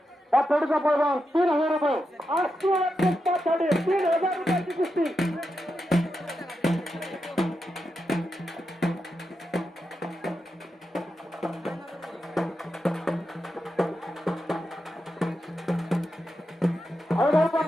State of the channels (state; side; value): normal; both; correlation 0.87